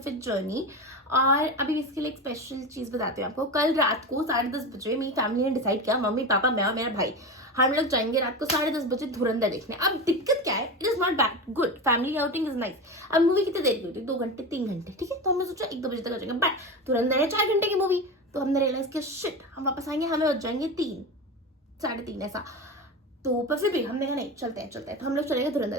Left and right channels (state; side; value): normal; both; correlation 0.24